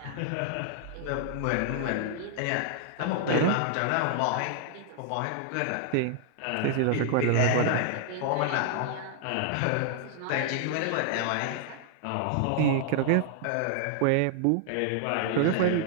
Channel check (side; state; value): both; different; correlation 0.00